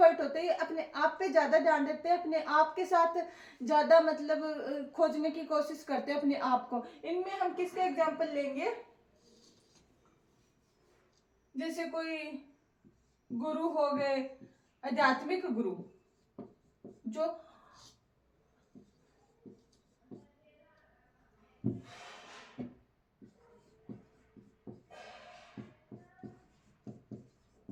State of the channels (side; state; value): both; identical; correlation 1.00